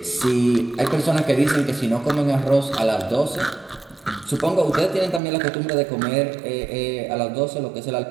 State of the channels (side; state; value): left; drops out; at 5.2 s